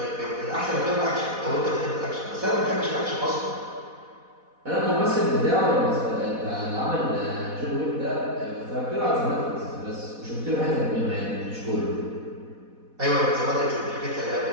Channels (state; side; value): late; left; 4.1 ms